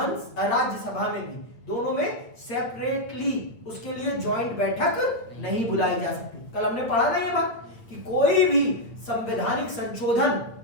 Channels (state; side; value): late; right; 8.7 ms